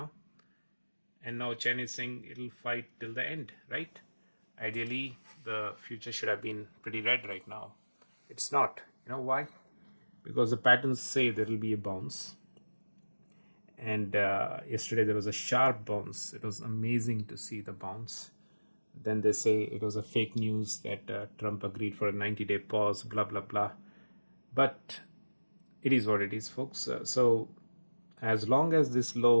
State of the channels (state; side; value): inverted; both; correlation -1.00